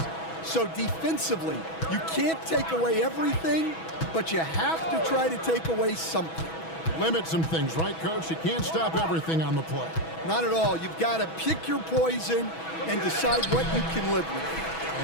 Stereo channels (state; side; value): late; right; 6.1 ms